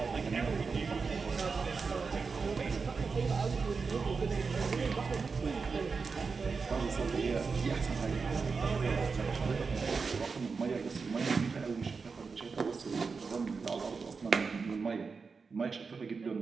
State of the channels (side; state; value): left; quieter; 4.9 dB